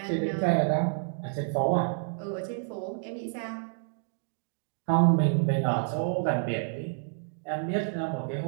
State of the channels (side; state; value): left; silent; digital silence